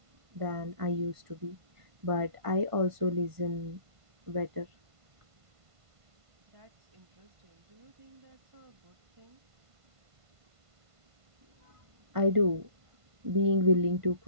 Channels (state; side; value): late; left; 1.5 ms